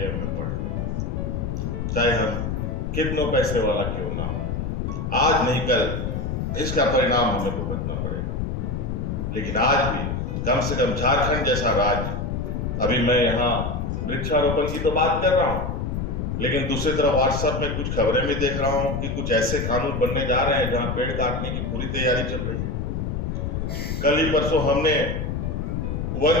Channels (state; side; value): noise; left; rumble, 2 dB below the sound